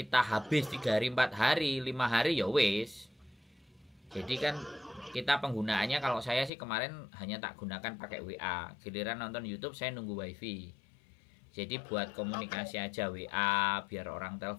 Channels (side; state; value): right; drops out; at 6.5 s